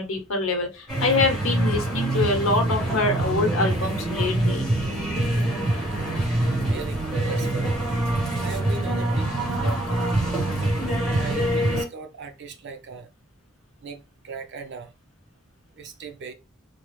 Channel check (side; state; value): both; normal; correlation 0.56